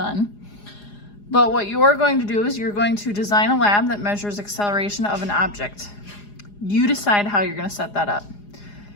But what you're going to do is you're going to design a lab that measures acceleration of an object. You decide how you're going to set that up.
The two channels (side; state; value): right; late; 4.9 ms